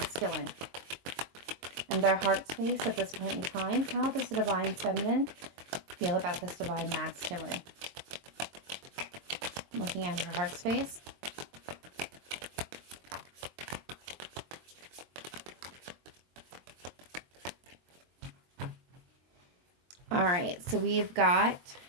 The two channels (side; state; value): left; late; 23 ms